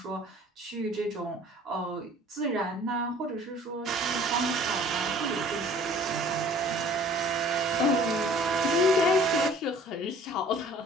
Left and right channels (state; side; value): normal; both; correlation 0.51